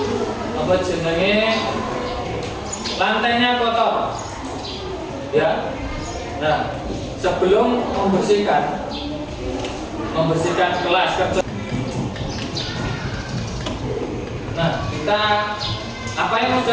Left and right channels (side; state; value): both; identical; correlation 1.00